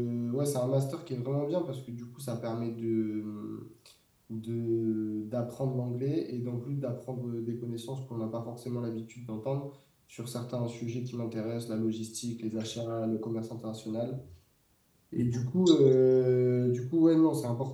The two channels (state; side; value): identical; both; correlation 1.00